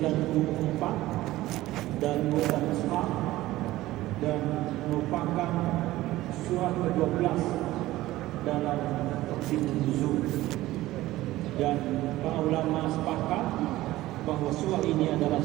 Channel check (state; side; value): quieter; left; 16.7 dB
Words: dan Al-Isra, dan merupakan surah ke-12 dalam tertib nuzul. Dan para ulama sepakat bahawa surah ini adalah